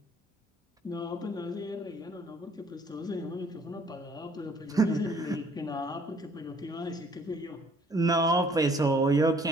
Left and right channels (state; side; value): normal; both; correlation 0.60